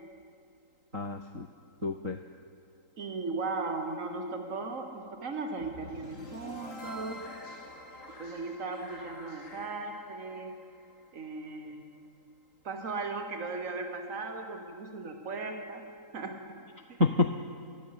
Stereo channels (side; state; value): left; late; 3.8 ms